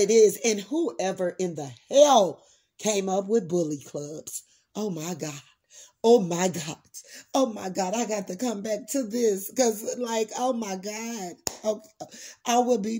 is. And whoever in the hell came up with bully clubs. Oh my God. Oh my God. Oh my God. I got to come back to this because oh my God. Okay. I will be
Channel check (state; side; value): identical; both; correlation 1.00